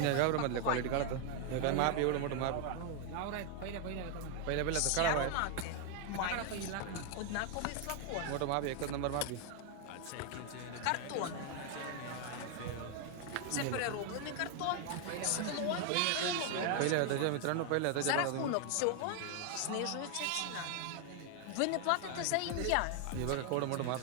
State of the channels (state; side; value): different; both; correlation 0.00